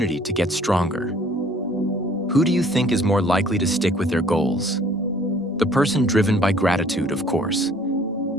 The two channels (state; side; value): normal; both; correlation 0.56